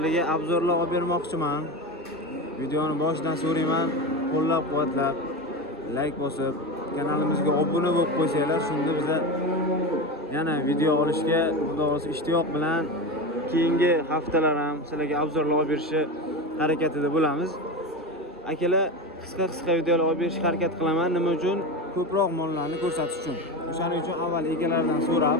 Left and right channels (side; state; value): both; normal; correlation 0.22